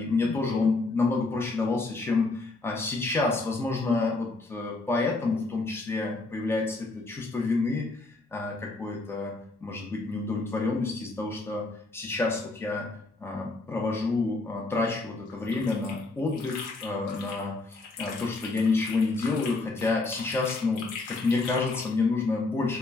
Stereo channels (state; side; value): quieter; right; 3.3 dB